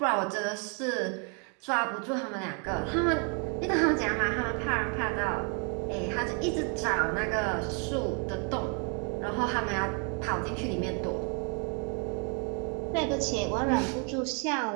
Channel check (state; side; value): quieter; left; 37.1 dB